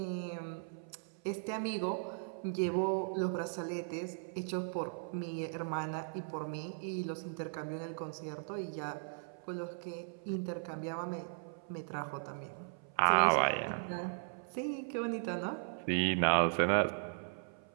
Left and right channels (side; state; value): left; silent; 53 dB below the other